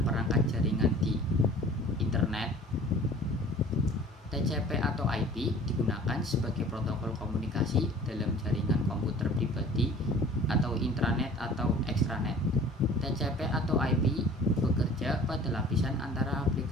perangkat jaringan di internet. TCP atau IP digunakan sebagai protokol komunikasi dalam jaringan komputer pribadi atau intranet atau extranet. TCP atau IP bekerja pada lapisan antara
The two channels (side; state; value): both; normal; correlation 0.47